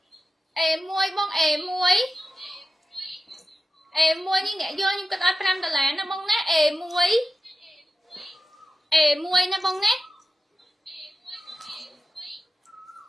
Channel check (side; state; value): both; normal; correlation 0.93